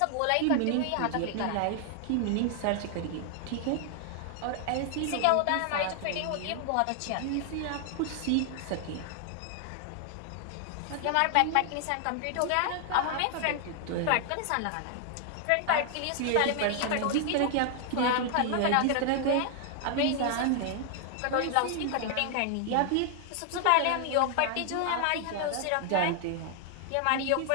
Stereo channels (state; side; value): different; both; correlation 0.00